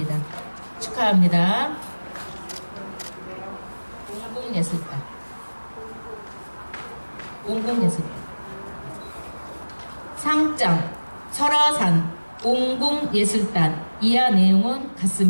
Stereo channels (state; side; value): inverted; both; correlation -1.00